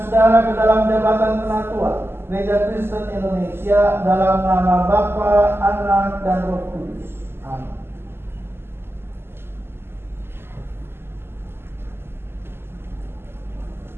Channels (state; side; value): late; left; 0.12 ms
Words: saudara ke dalam jabatan penatua Gereja Kristen Indonesia dalam nama Bapa, Anak, dan Roh Kudus. Amin.